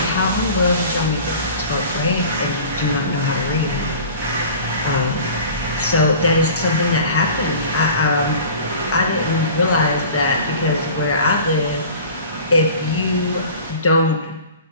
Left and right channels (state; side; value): inverted; both; correlation -0.42